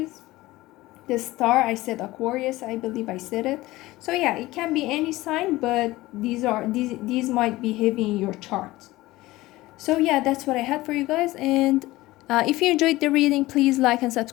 The star, I said Aquarius, I believe I said it. So yeah, it can be any sign, but these might be heavy in your chart. So yeah, that's what I had for you guys. And if you enjoyed the reading, please like and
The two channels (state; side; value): quieter; right; 18.4 dB